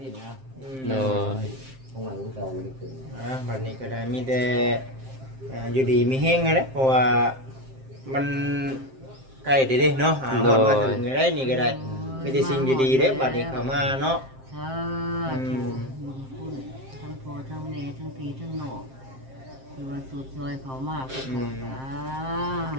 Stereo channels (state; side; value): late; left; 7.6 ms